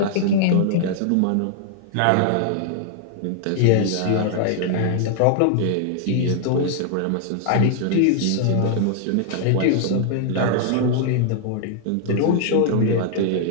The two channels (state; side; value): different; both; correlation -0.01